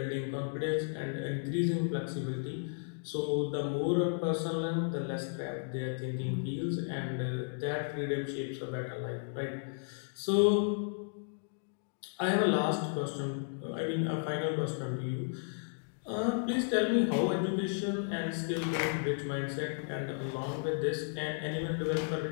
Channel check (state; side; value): silent; right; digital silence